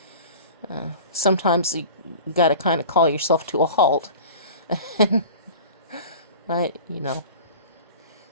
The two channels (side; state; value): both; inverted; correlation -0.38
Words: Sometimes you gotta kind of call yourself to a halt.